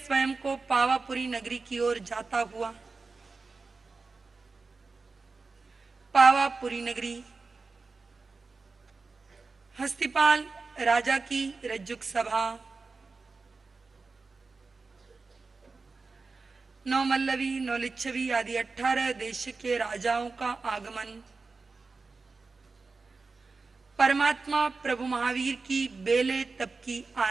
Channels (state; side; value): quieter; left; 4.1 dB